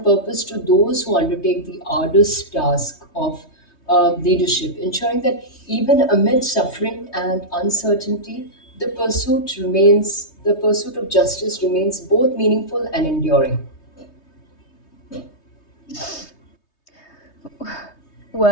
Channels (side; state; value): right; late; 3.2 ms